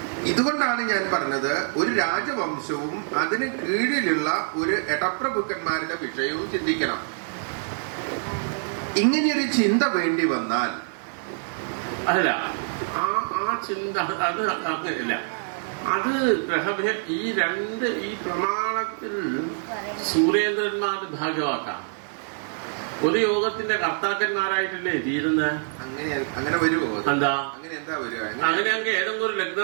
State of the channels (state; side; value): silent; left; 61 dB below the other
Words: ഇതുകൊണ്ടാണ് ഞാൻ പറഞ്ഞത് ഒരു രാജവംശവും അതിന് കീഴിലുള്ള ഒരു എടപ്രഭുക്കന്മാരുടെ വിഷയവും ചിന്തിക്കണം. ഇങ്ങനെയൊരു ചിന്ത വേണ്ടി വന്നാൽ അല്ല, ആ ചിന്ത അത് അങ്ങനെയല്ല. അത് ഈ പ്രമാണത്തിൽ സൂര്യേന്ദ്രന്മാർ ഭാഗ്യവാക്കാം. ഒരു യോഗത്തിന്റെ കർത്താക്കന്മാരായിട്ടല്ലേ തീരുന്നത്. അങ്ങനെ വരുമോ? എന്താ അങ്ങനെ അങ്ങ് ഏതെങ്കിലും ഒരു